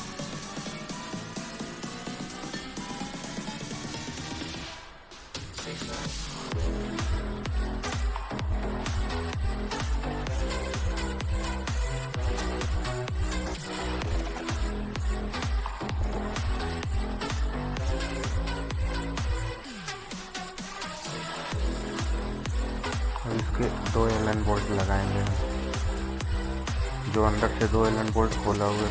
अब इसके 2 एलन बोल्ट लगाएंगे हम, जो अंदर से 2 एलन बोल्ट खोला हुए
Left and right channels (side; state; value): both; identical; correlation 1.00